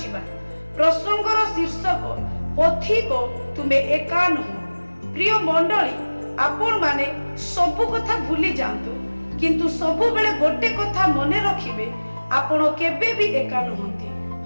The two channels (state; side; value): inverted; both; correlation -1.00